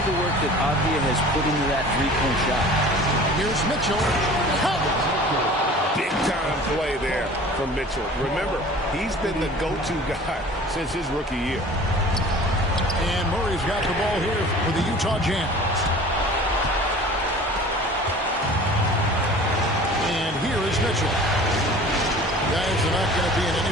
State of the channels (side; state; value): both; normal; correlation 0.44